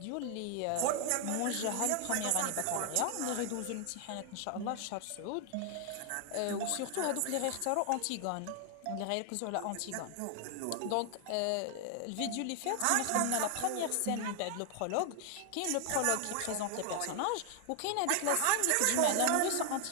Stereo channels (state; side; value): different; both; correlation 0.00